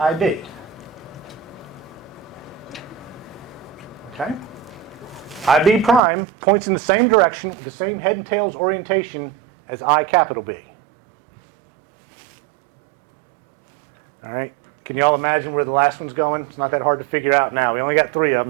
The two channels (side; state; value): left; drops out; at 6.0 s